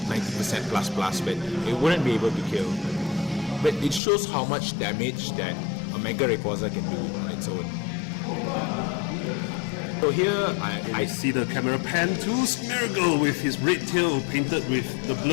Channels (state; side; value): drops out; right; at 4.0 s